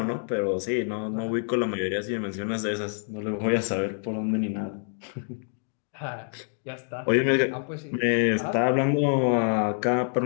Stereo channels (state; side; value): silent; right; 60 dB below the other